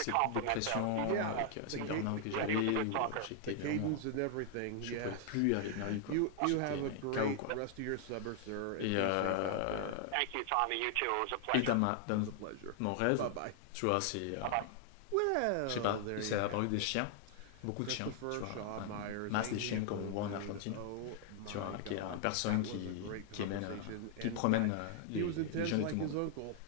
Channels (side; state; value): both; different; correlation 0.00